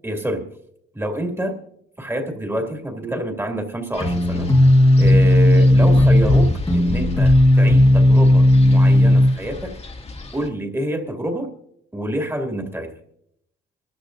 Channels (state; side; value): normal; both; correlation 0.89